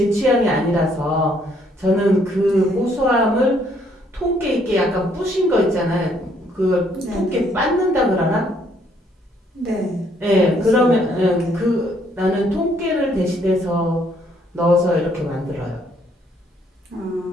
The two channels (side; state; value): both; normal; correlation 0.67